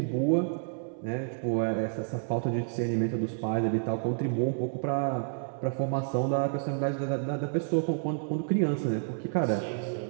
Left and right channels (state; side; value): silent; left; 58 dB below the other